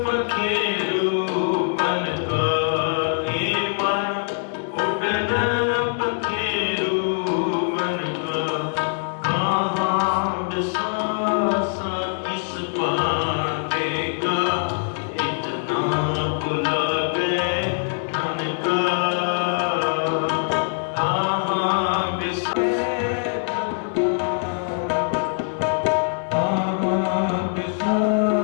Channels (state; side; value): silent; right; 63 dB below the other